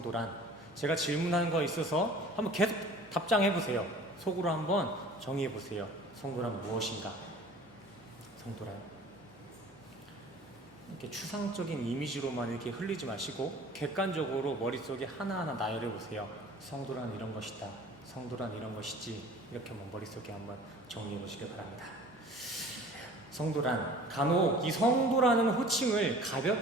제가 질문하는 거 있어서 한번 계속 답장해 보세요. 속으로 한번 정의해 보세요. 성도란 무엇인가? 성도란, 이렇게 추상적인 이미지로만 이렇게 흘리지 마시고 객관적으로 머릿속에 하나하나 나열해 보세요. 성도란 이런 것이다, 성도란 이런 것이지, 이렇게 한번 머릿속에 한번 정리해 보시길 바랍니다. 성도란, 간혹 이 성도라는 호칭을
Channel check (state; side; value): normal; both; correlation 0.46